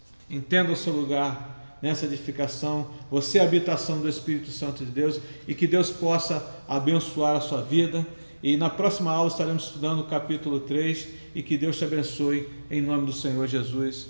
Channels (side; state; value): both; inverted; correlation -1.00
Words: Entenda o seu lugar nessa edificação. Você é a habitação do Espírito Santo de Deus, e que Deus possa abençoar a sua vida. E na próxima aula estaremos estudando o capítulo 3, e que Deus te abençoe em nome do Senhor Jesus.